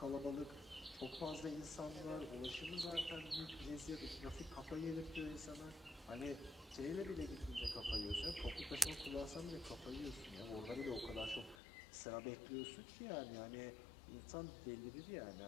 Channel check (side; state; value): right; drops out; at 11.6 s